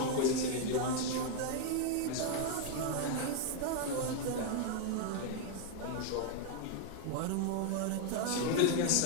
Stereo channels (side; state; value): both; different; correlation 0.00